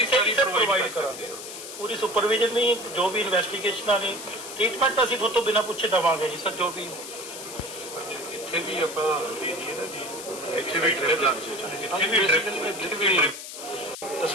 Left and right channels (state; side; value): noise; left; hiss, 11 dB below the sound